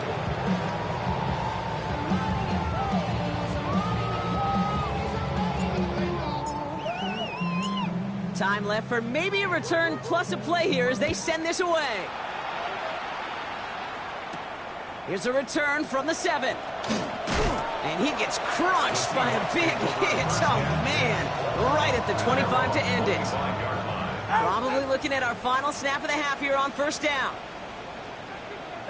Time left for maybe a return plus a play here as they send this away. Here's a return from the 7. And he gets crunched by a big hit. Oh, man. Right at the 25 to end it. Probably looking at our final snap of the half here on first down.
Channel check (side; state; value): both; identical; correlation 1.00